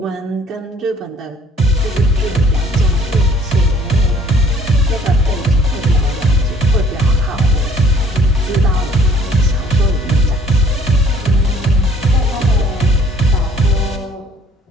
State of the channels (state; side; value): normal; both; correlation 0.57